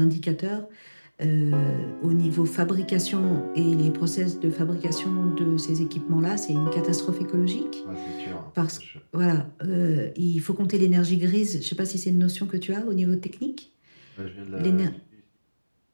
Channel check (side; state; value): both; inverted; correlation -1.00